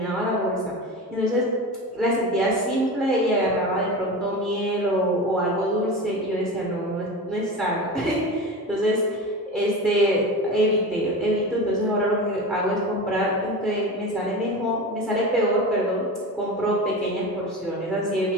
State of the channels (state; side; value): normal; both; correlation 0.28